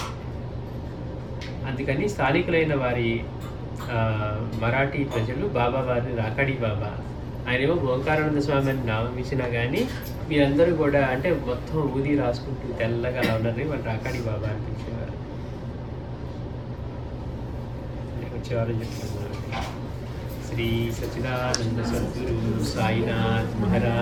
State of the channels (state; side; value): identical; both; correlation 1.00